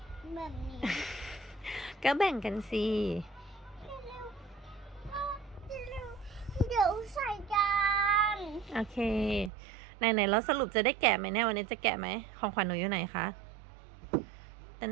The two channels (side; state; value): left; drops out; at 9.5 s